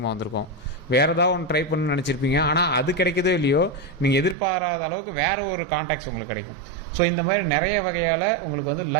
வந்திருக்கும். வேறு ஏதாவது ஒன்று ட்ரை பண்ணணும்னு நினச்சிருப்பீங்க, ஆனால் அது கிடைக்கதோ இல்லையோ, நீங்கள் எதிர்பாராத அளவுக்கு வேறு ஒரு கான்டாக்ட்ஸ் உங்களுக்கு கிடைக்கும். ஸோ இந்த மாதிரி நிறைய வகையால் உங்களுக்கு வந்து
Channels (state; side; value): drops out; left; at 4.4 s